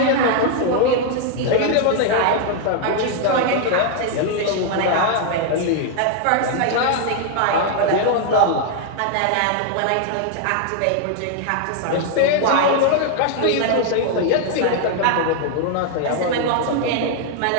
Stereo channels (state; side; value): different; both; correlation 0.00